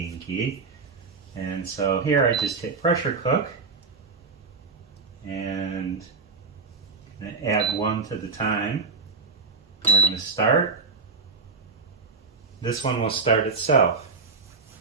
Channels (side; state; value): left; quieter; 4.4 dB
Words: And so here I just hit pressure cook and add 1 to the time. And we're going to start. This one will start itself.